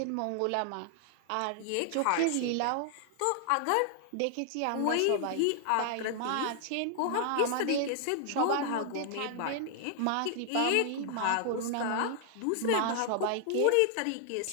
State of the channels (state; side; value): different; both; correlation 0.00